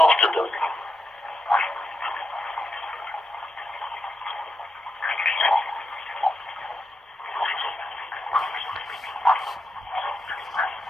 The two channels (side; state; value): both; normal; correlation 0.86